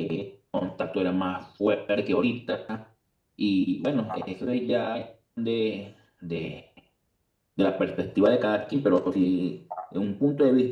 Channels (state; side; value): identical; both; correlation 1.00